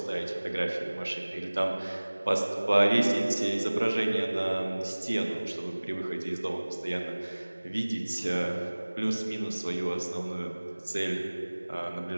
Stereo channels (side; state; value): both; inverted; correlation -1.00